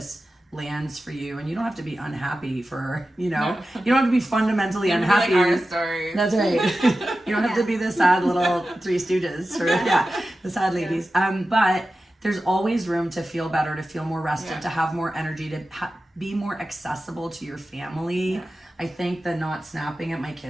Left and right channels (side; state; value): both; normal; correlation 0.94